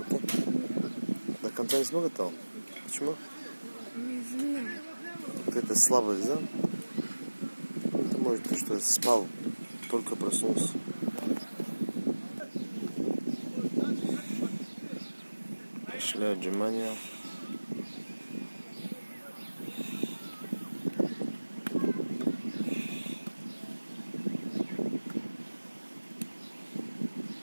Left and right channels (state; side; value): inverted; both; correlation -1.00